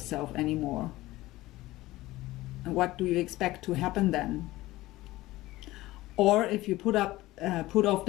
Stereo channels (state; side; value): quieter; right; 17.9 dB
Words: anymore. And what do you expect to happen then? Or if you put off